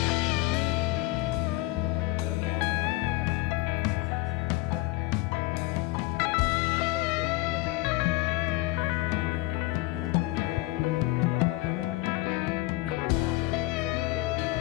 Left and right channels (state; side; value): quieter; right; 19.9 dB